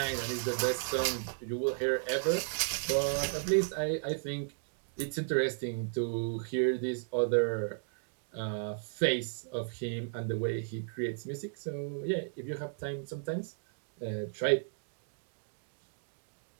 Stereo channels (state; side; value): silent; left; digital silence